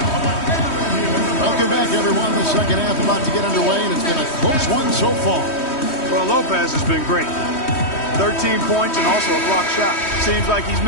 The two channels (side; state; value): right; late; 3.1 ms